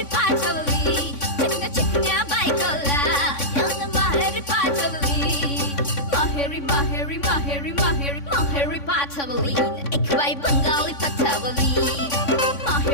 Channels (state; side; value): late; right; 3.6 ms